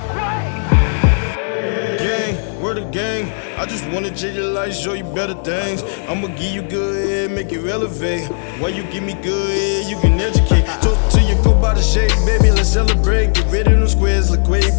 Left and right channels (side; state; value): right; silent; digital silence